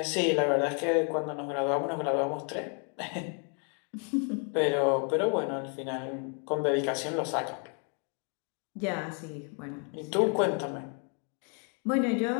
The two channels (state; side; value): quieter; right; 39.0 dB